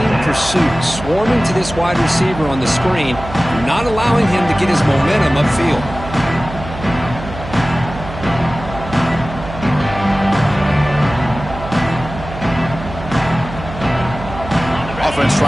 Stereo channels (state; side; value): noise; right; hum, 11 dB below the sound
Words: pursuit. Swarming to this wide receiver on the screen, not allowing him to get his momentum upfield. Offense